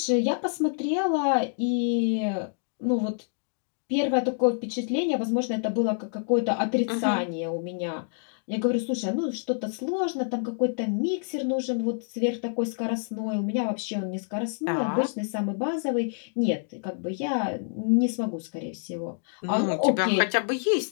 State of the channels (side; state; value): right; silent; digital silence